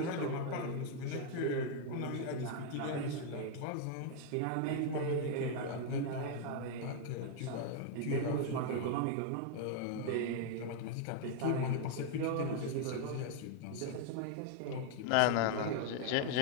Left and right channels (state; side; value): different; both; correlation 0.00